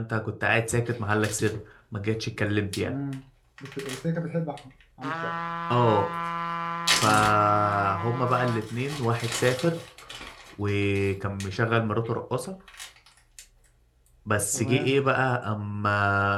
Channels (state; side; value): identical; both; correlation 1.00